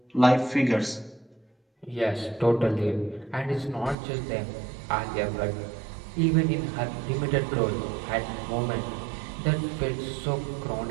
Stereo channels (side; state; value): left; drops out; at 4.0 s